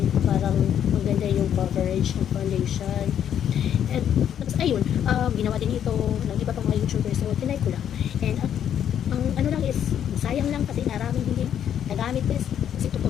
parang maganda yung coverage ng foundation. And ayun, ginawa din ito ng iba pang mga YouTubers, so tinay ko lang. And ang ano lang is, sayang lang kasi maraming hindi nagamit bes. Kasi ito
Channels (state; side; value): quieter; right; 9.5 dB